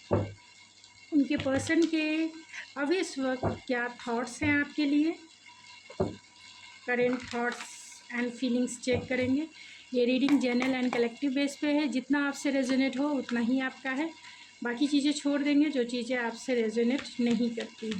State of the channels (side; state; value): both; identical; correlation 1.00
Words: उनके पर्सन के अभी इस वक्त क्या थॉट्स हैं आपके लिए। Current thoughts and feelings check करेंगे। ये reading general and collective base पे है। जितना आपसे रेजोनेट हो उतना ही आपका है। बाकी चीज़ें छोड़ देंगे जो चीज़ें आपसे रेजोनेट नहीं करती